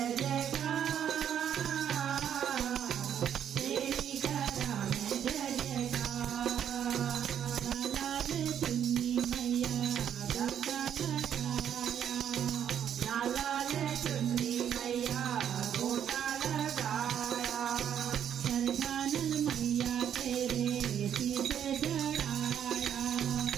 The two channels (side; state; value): left; quieter; 9.3 dB